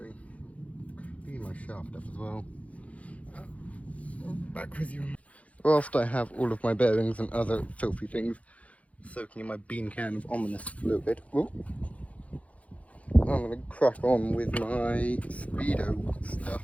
Clean my shaft up as well. Back with you. Whilst I have all of my bearings and other filthy things soaking in my bean can of ominous fluid, I'm going to crack on with my speedo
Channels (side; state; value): right; late; 0.066 ms